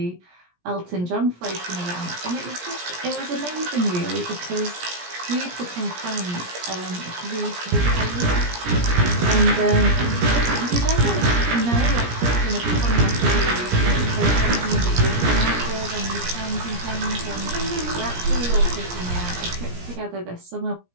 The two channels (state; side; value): late; left; 17 ms